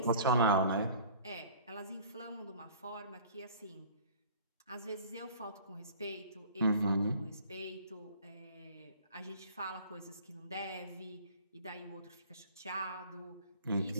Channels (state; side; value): inverted; both; correlation -0.47